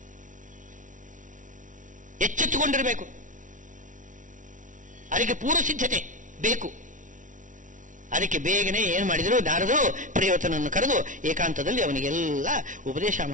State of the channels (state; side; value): late; left; 0.37 ms